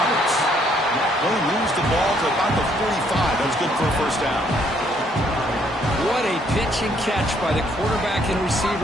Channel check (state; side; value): normal; both; correlation 0.67